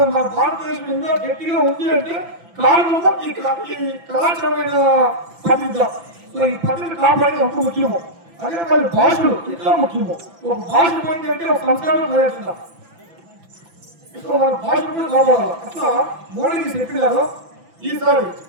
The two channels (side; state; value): left; late; 6.0 ms